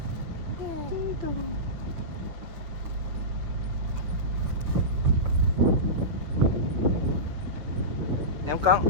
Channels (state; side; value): late; left; 6.6 ms